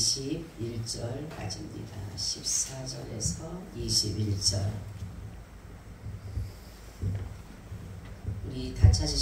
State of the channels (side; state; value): both; identical; correlation 1.00